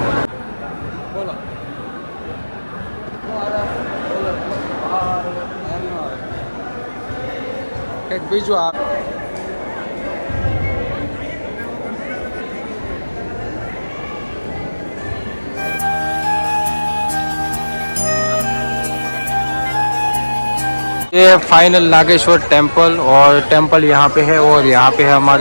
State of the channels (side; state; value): both; inverted; correlation -1.00